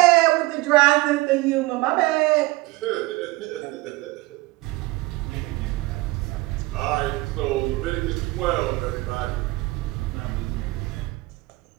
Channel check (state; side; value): quieter; left; 20.7 dB